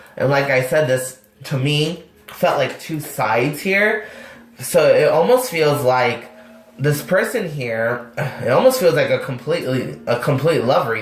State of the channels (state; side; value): identical; both; correlation 1.00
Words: And like I said, this, to me, felt like two sides here. So it almost feels like this person here, it almost feels like a complete love